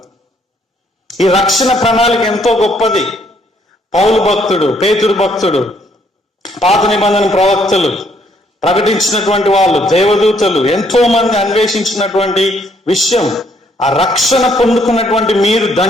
ఈ రక్షణ ప్రణాళిక ఎంతో గొప్పది. పౌలు భక్తుడు, పేతురు భక్తుడు, పాత నిబంధన ప్రవక్తలు ప్రకటించినటువంటి వాళ్ళు, దేవదూతలు ఎంతో మంది అన్వేషించినటువంటి విషయం. ఆ రక్షణ పొందుకున్నటువంటి మీరు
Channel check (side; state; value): both; normal; correlation 0.68